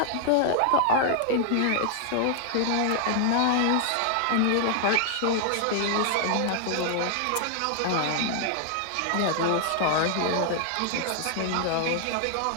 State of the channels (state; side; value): different; both; correlation 0.00